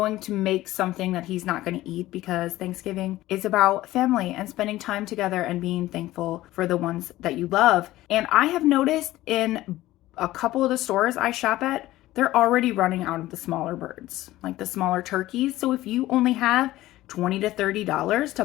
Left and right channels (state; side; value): quieter; right; 16.2 dB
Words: to make something that he's not going to eat because Thanksgiving is about family and spending time together and being thankful for the ones that you love. And I have noticed in a couple of the stores I shop at, they're already running out of the smaller birds, like the smaller turkeys. So if you only have $20 to $30